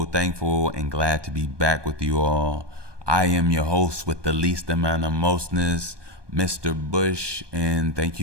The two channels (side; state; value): left; late; 1.2 ms